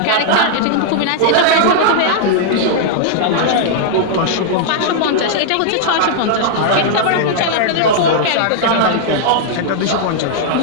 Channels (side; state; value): both; different; correlation -0.01